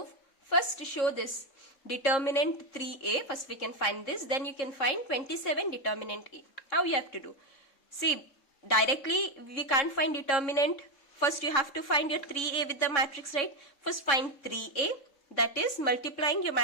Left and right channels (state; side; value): late; right; 3.6 ms